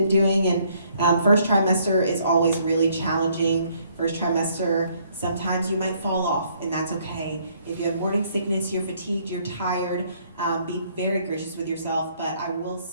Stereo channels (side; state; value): both; inverted; correlation -0.66